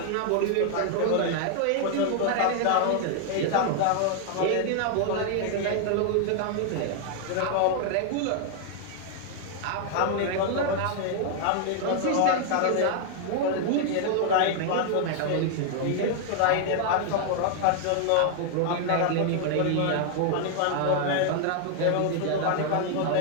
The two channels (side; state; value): both; different; correlation 0.00